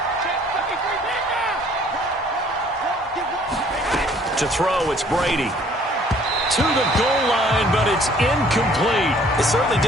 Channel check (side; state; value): both; normal; correlation 0.57